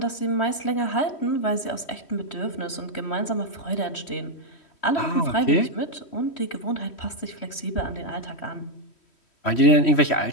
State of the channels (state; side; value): late; right; 3.1 ms